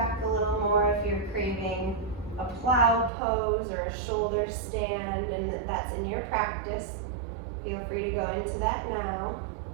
a little more if you're craving a plow pose or a shoulder stand and that's in your practice. Feel free to go into that now.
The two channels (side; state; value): left; drops out; at 3.1 s